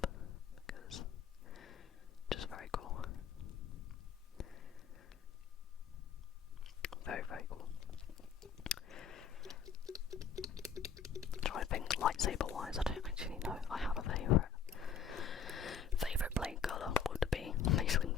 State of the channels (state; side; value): quieter; right; 6.9 dB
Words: because it's just very cool. Very, very cool. Try to think lightsaber wise, I don't actually know. I have a favourite blade colour would be Mace